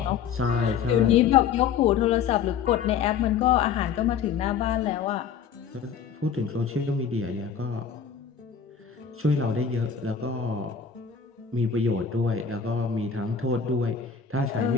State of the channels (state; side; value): quieter; right; 7.0 dB